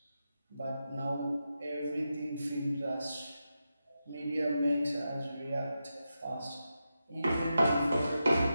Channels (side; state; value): both; inverted; correlation -0.88